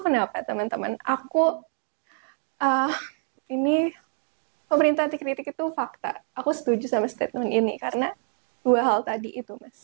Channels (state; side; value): silent; left; 56 dB below the other